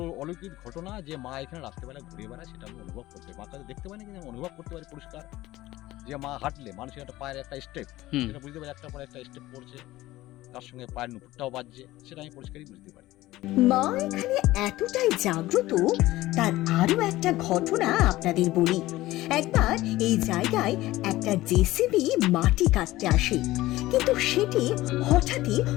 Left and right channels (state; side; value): quieter; right; 17.1 dB